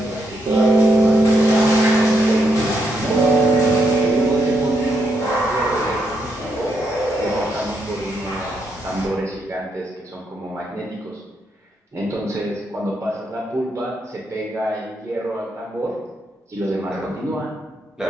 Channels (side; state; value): both; normal; correlation 0.79